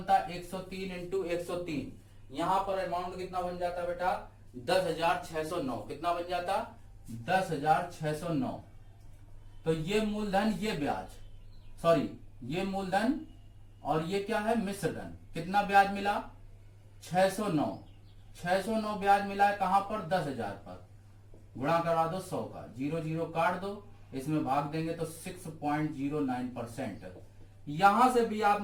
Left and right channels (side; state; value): both; identical; correlation 1.00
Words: 103 इंटू 103। यहां पर अमाउंट कितना बन जाता बेटा? 10,609। कितना बन जाता? 10,609। तो ये मूलधन, ये ब्याज, सॉरी ये मूलधन और ये क्या है, मिश्र धन। कितना ब्याज मिला, 609 ब्याज मिला है। कहां पर, 10,000 पर। गुणा करवा दो 100 का, 0 0 काट दो, इसमें भाग देंगे तो 6.09%। यहां से भी आप